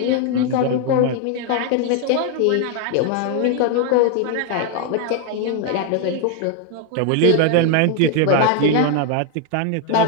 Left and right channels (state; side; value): different; both; correlation 0.01